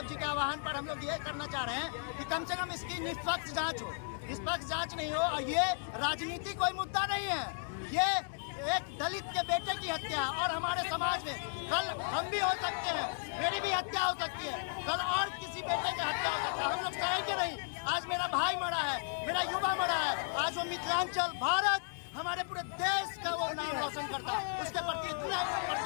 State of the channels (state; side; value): silent; right; digital silence